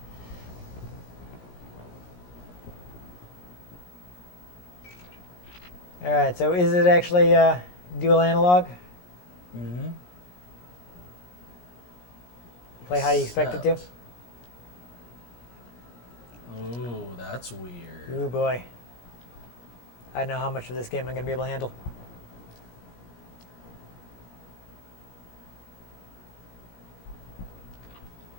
All right, so is it actually dual analog? Mm-hmm. Play how you expect it to? Ooh, that's weird. Ooh boy. I know how much of this game I'm going to be able to handle.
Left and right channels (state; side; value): late; right; 17 ms